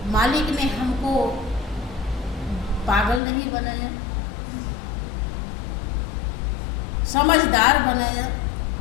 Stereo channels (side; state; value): right; drops out; at 3.2 s